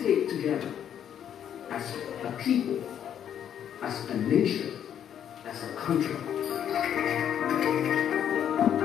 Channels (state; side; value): quieter; right; 9.5 dB